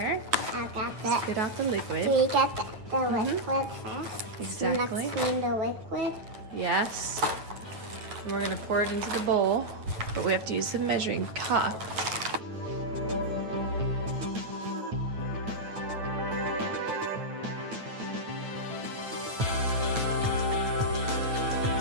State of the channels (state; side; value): late; left; 9.2 ms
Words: I got that. Spit out the liquid. We get the liquid first. Exactly. Next in the liquid. Yes. And we're gonna pour it into the bowl, but we have to use the measuring cup.